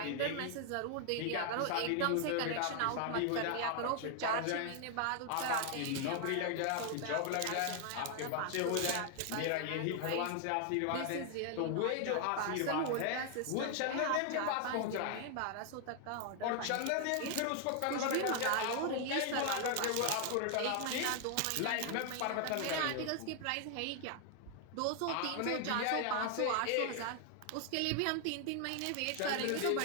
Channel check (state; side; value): different; both; correlation 0.00